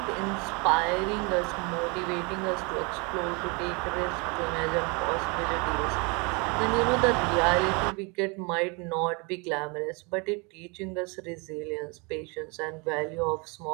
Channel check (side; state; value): left; quieter; 30.5 dB